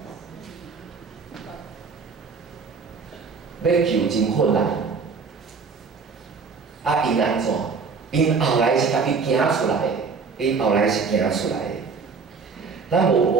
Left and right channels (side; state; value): left; quieter; 5.1 dB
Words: 要救真困难。因安怎？因后来是家己行出来的。咱